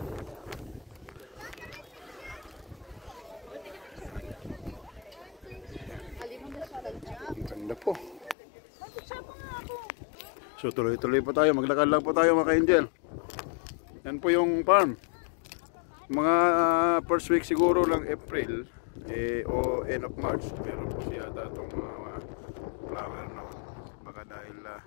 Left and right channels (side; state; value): right; drops out; at 8.3 s